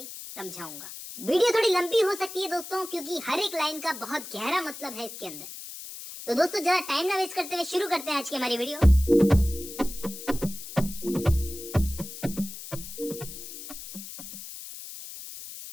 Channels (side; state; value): left; noise; hiss, 11 dB below the sound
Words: समझाऊंगा। वीडियो थोड़ी लंबी हो सकती है दोस्तों, क्योंकि हर एक लाइन का बहुत गहरा मतलब है इसके अंदर। तो दोस्तों ज्यादा टाइम ना वेस्ट करते हुए शुरू करते हैं आज की हमारी वीडियो।